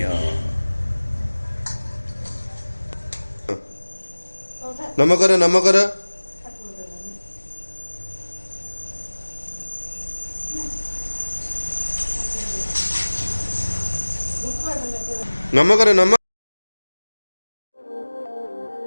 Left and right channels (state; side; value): inverted; both; correlation -1.00